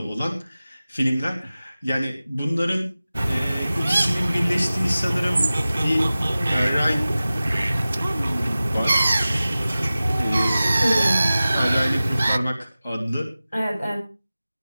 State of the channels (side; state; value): both; inverted; correlation -0.96